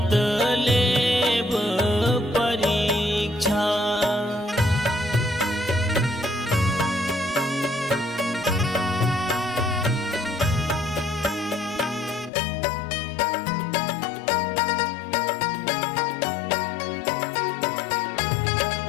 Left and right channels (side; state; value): right; drops out; at 12.3 s